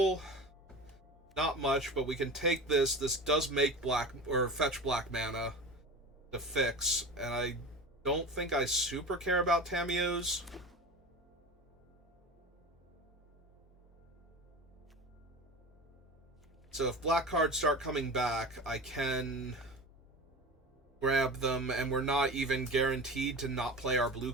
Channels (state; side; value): normal; both; correlation 0.32